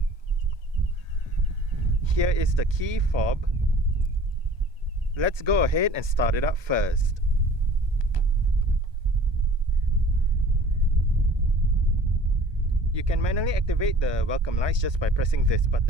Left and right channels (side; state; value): left; late; 1.2 ms